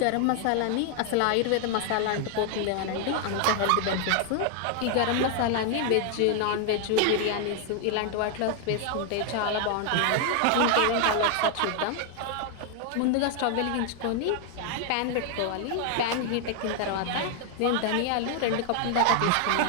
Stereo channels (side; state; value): both; different; correlation 0.00